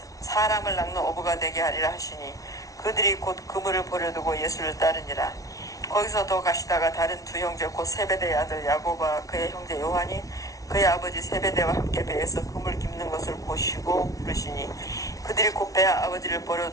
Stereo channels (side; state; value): right; late; 0.17 ms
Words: 사람을 낚는 어부가 되게 하리라 하시니 그들이 곧 그물을 버려두고 예수를 따르니라. 거기서 더 가시다가 다른 두 형제 곧 세베대의 아들 야고보와 그의 형제 요한이 그의 아버지 세베대와 함께 배에서 그물 깁는 것을 보시고 부르시니 그들이 곧 배 아버지를